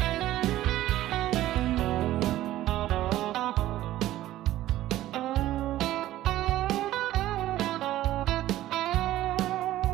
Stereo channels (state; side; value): quieter; left; 14.5 dB